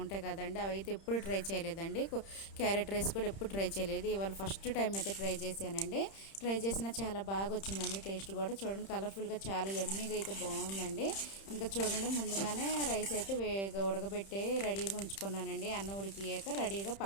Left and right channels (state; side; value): late; right; 31 ms